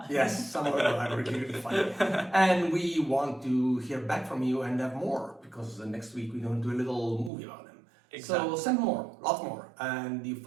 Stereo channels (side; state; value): left; drops out; at 7.3 s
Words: Yes, some of them are really funny. And we want to hear back from you and have more, because next week we're going to do a little movie about them. Exactly. So send more, lots more, and you